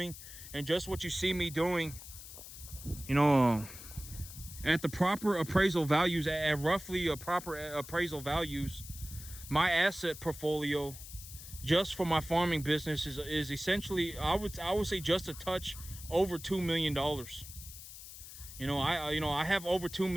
and just what you see me doing, at the proper appraisal values, at roughly proper appraisal values, my asset portfolio just for my farming business is essentially, I would say, just a touch over $2 million. I have over $2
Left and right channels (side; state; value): left; noise; hiss, 14 dB below the sound